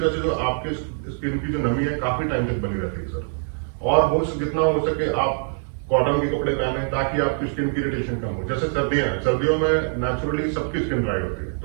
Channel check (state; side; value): silent; left; 63 dB below the other